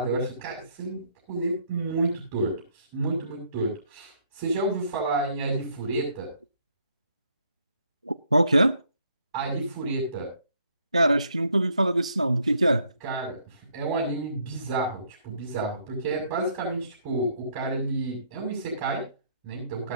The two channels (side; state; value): both; inverted; correlation -0.69